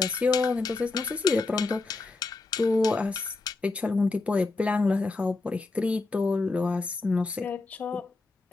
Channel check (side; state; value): right; quieter; 3.5 dB